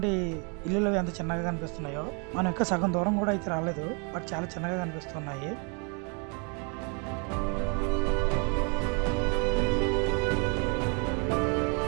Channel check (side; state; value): left; quieter; 35.4 dB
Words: ఇల్లులు ఎంత చిన్నగా కనిపిస్తున్నాయో. మనం ఇంకా సగం దూరం కూడా అయితే రాలేదు, బట్ చాలా చిన్నగా కనిపిస్తున్నాయి.